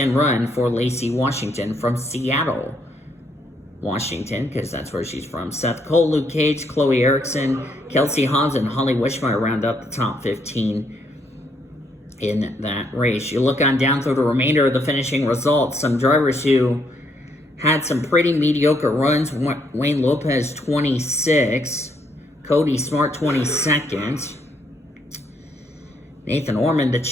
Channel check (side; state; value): both; normal; correlation 0.72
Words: run for Lacey Washington from Seattle, Washington, because that's where she's from. Seth Cole, Luke Cage, Chloe Erickson, Kelsey Hobbs, and Holly Wishmeyer round up the top 15 in that race. You look on down through the remainder of the finishing results. Some drivers who had some pretty mediocre runs. Wayne Lopez, 26. Cody Smart, 22nd. Nathan Orman, the